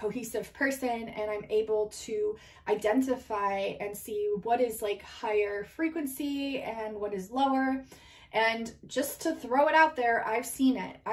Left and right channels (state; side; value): identical; both; correlation 1.00